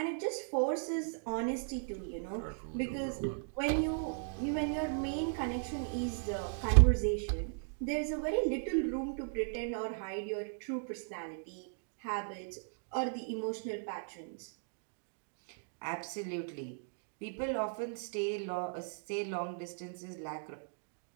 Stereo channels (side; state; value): left; silent; digital silence